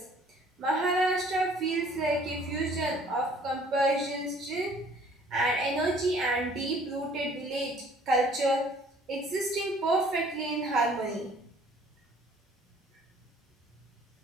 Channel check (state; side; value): normal; both; correlation 0.56